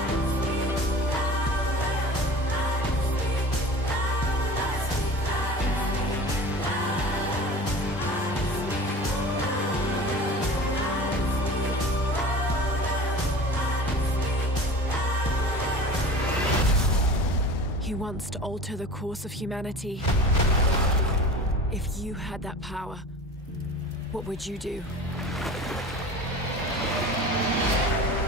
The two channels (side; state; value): both; normal; correlation 0.37